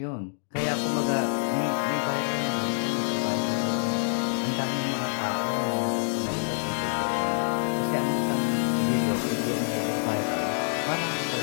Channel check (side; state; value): right; silent; digital silence